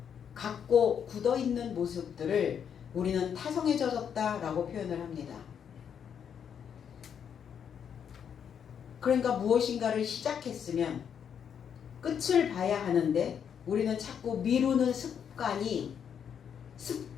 갖고 굳어있는 모습들을 우리는 타성해져졌다라고 표현을 합니다. 그러니까 무엇인가를 시작했으면 끝을 봐야 하는데 우리는 자꾸 미루는 습관이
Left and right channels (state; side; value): quieter; right; 7.9 dB